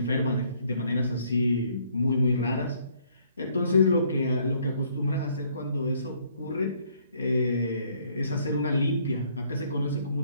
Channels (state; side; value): inverted; both; correlation -0.65